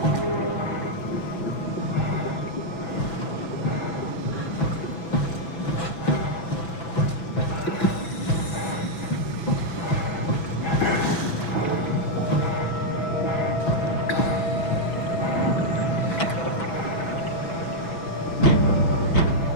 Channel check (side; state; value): right; late; 6.0 ms